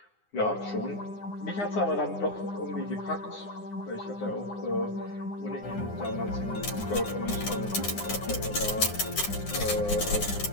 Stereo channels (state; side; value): late; right; 9.8 ms